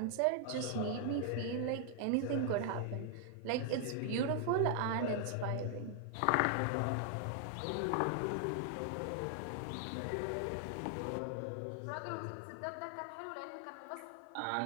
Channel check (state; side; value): different; both; correlation 0.00